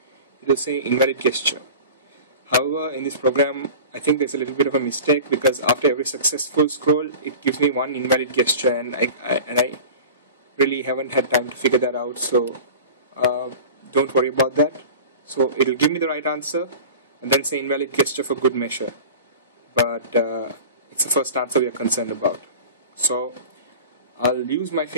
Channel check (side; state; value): both; inverted; correlation -0.37